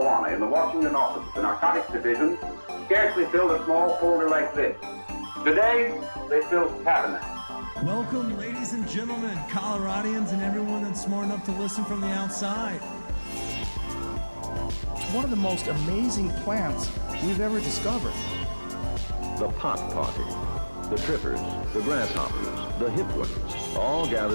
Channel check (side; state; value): both; inverted; correlation -1.00